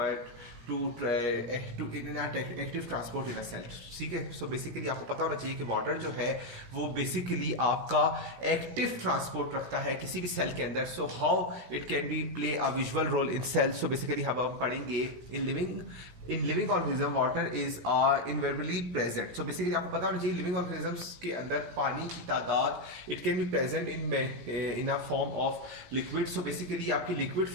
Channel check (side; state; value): left; late; 17 ms